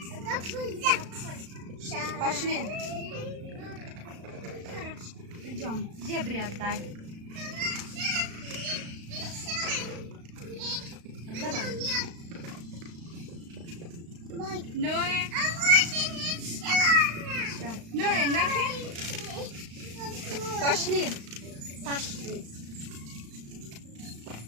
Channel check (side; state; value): left; late; 35 ms